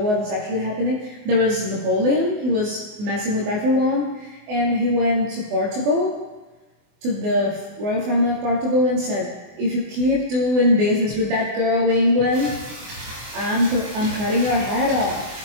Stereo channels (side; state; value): left; late; 24 ms